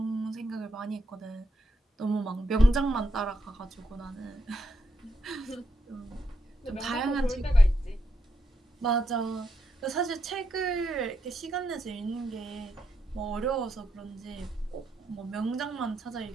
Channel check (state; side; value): normal; both; correlation 0.81